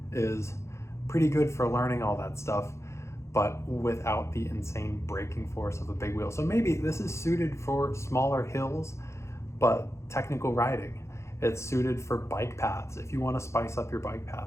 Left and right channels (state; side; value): late; right; 0.14 ms